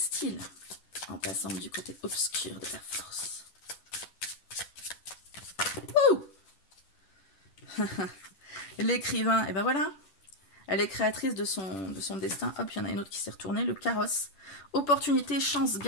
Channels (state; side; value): late; right; 10 ms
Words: en passant du côté obscur de la force? L'écrivain, et ben voilà, elle est créatrice de son destin. Hop, il y en a une autre qui s'est retournée, le carrosse. Opportunité, chance,